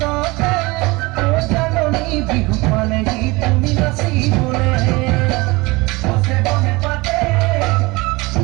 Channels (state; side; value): quieter; left; 23.3 dB